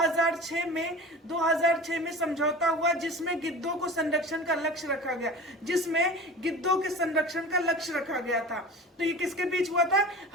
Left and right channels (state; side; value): normal; both; correlation 0.36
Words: में समझौता हुआ, जिसमें गिद्धों को संरक्षण का लक्ष्य रखा गया, था। तो ये किसके बीच हुआ था?